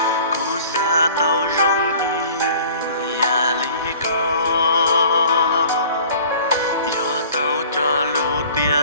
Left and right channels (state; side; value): inverted; both; correlation -0.48